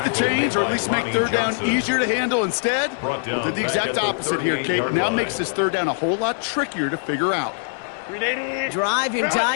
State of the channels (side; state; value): right; silent; digital silence